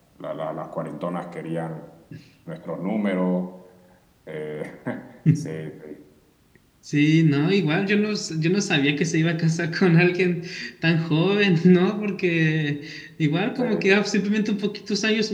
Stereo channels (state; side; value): identical; both; correlation 1.00